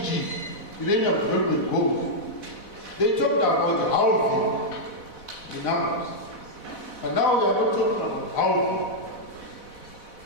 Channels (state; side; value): late; right; 4.1 ms